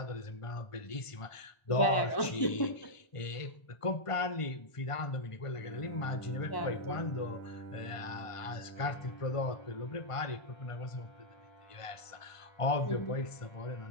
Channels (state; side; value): late; right; 1.1 ms